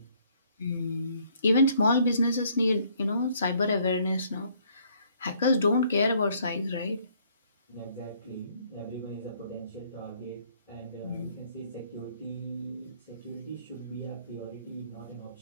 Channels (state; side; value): inverted; both; correlation -0.64